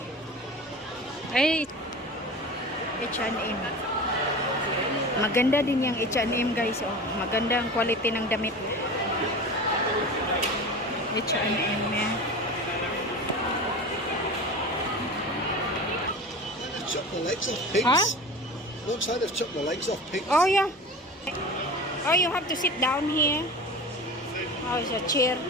Ay, H&M. Maganda din yung H&M guys. Oh, maganda ang quality ng damit. H&M yan. Chop the legs off pigs. Huh? Looks like they've chopped the legs off pigs. Oh yeah. Oh, you have to sit down here. Oh, it's a chair.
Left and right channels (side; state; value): both; normal; correlation 0.33